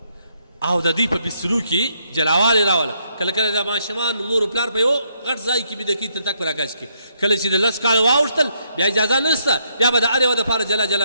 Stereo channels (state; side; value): inverted; both; correlation -0.74